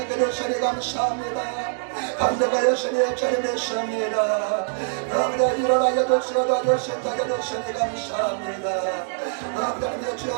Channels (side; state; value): left; silent; digital silence